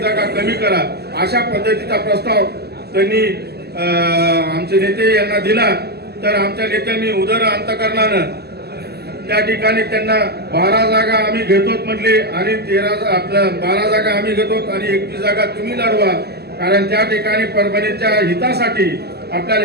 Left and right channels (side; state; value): left; late; 0.47 ms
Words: जागा कमी करा, अशा पद्धतीचा प्रस्ताव त्यांनी आमचे नेते यांना दिला. तर आमच्या नेत्यांनी उदर अंतकरणानं त्या ठिकाणी त्यांना 12 जागा आम्ही घेतोत म्हटले आणि 12 जागा आम्ही घेतोत आणि 21 जागा तुम्ही लढवा. कारण त्या ठिकाणी परभणीच्या हितासाठी